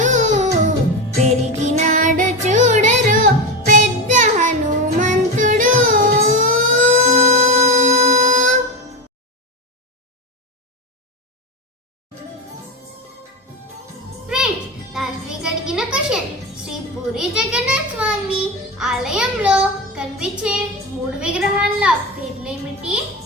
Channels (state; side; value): normal; both; correlation 0.17